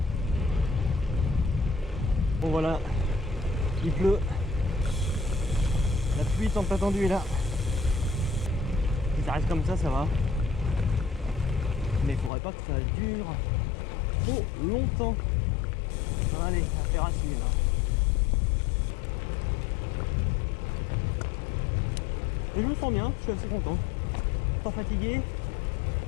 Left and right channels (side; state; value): right; drops out; at 12.3 s